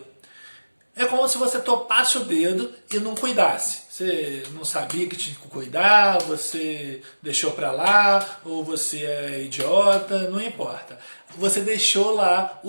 É como se você topasse o dedo e não cuidasse. Você não sabia que tinha que cuidar, você deixou pra lá, ou você é idiota, não importa. Você deixou lá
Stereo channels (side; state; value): both; inverted; correlation -1.00